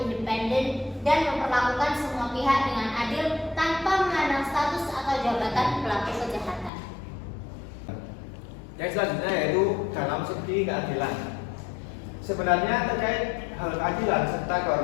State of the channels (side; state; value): right; drops out; at 6.7 s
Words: independen, dan memperlakukan semua pihak dengan adil tanpa memandang status atau jabatan pelaku kejahatan. Yang selanjutnya yaitu dalam segi keadilan. Sebenarnya terkait hal keadilan serta